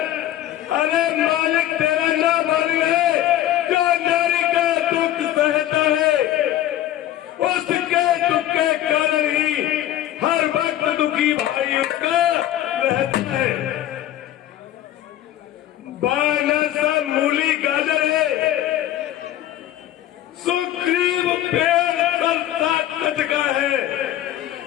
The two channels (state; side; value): quieter; right; 12.8 dB